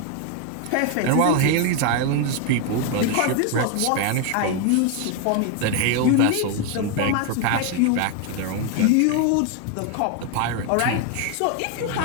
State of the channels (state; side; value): different; both; correlation 0.01